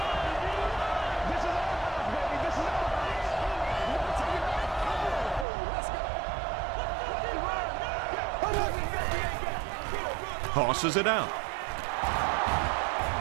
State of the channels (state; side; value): drops out; left; at 5.5 s